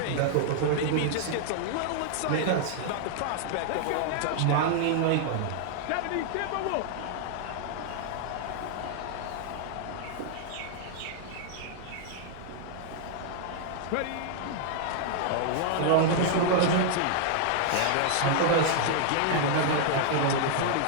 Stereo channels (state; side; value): different; both; correlation -0.01